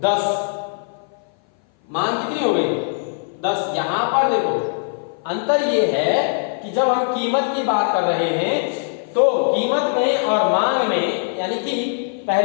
10, मांग कितनी हो गई 10। यहां पर देखो अंतर ये है कि जब हम कीमत की बात कर रहे हैं, तो कीमत में और मांग में, यानी कि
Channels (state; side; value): silent; right; 57 dB below the other